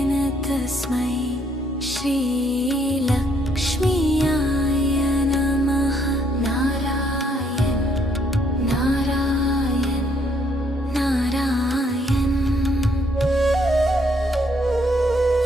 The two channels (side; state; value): both; normal; correlation 0.70